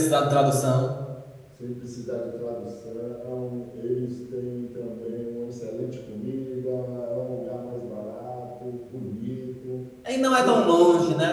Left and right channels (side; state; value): both; identical; correlation 1.00